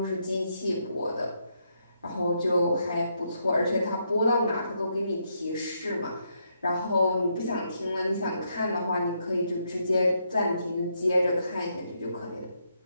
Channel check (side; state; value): both; inverted; correlation -0.78